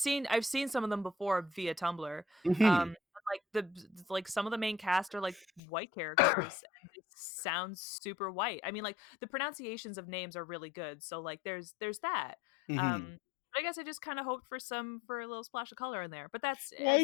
seen some of them before via Tumblr. Hmm. Like, like, some of the main cast are, like, white characters, and they sound super white. I mean, like, the pronunciations of names are really good, so, like, there's that. Hmm. But I guess I just kinda hoped for a little splash of color in there, but that's Well, I I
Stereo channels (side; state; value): right; drops out; at 5.6 s